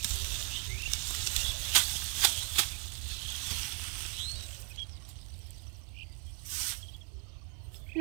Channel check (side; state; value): left; quieter; 37.8 dB